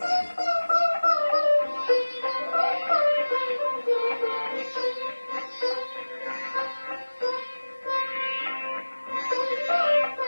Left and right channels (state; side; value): inverted; both; correlation -1.00